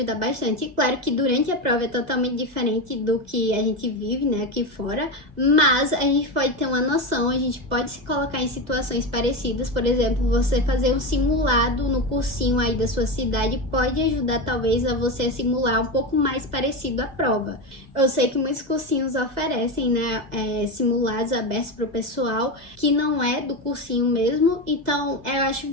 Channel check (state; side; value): late; left; 2.0 ms